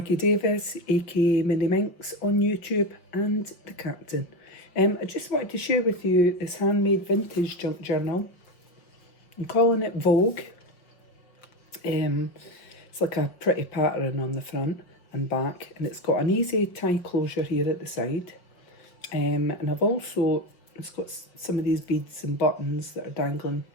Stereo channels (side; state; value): right; late; 5.7 ms